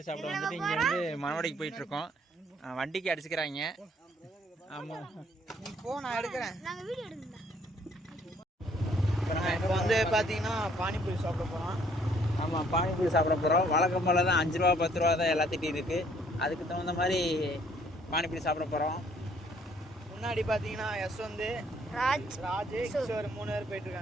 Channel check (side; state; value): both; normal; correlation 0.63